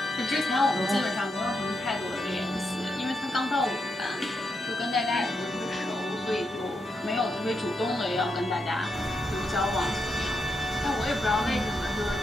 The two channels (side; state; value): both; normal; correlation 0.83